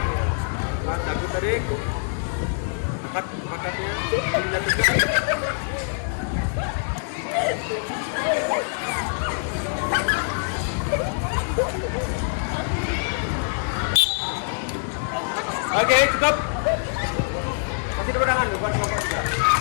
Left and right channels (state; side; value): silent; right; digital silence